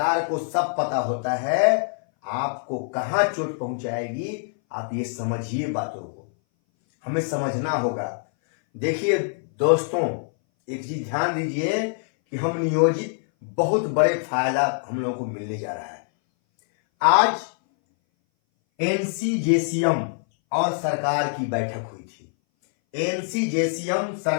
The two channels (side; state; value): right; silent; 59 dB below the other